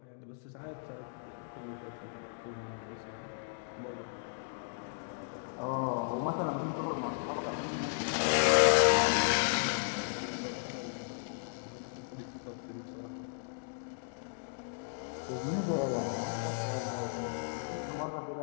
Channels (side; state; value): right; silent; digital silence